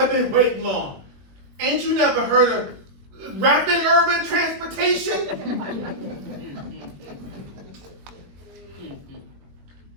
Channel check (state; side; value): late; left; 21 ms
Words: been waiting long. Ain't you never heard of rapid urban transportation?